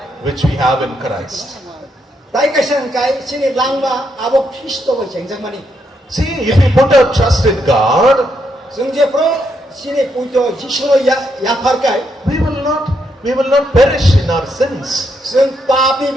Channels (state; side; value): normal; both; correlation 0.78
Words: which we have in Christ. Tai kaisang kai sini lang ma abo Kristo ba chengjak mani. See, if we put our trust in God, Sungje pro sini pujo Jisu ya far kai. we will not perish in our sins. Sung papi